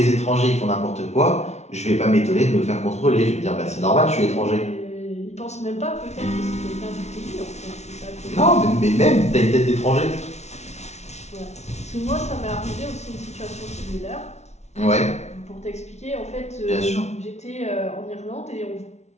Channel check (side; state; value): right; late; 0.32 ms